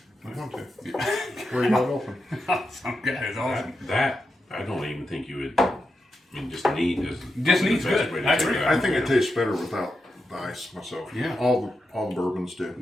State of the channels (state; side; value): normal; both; correlation 0.87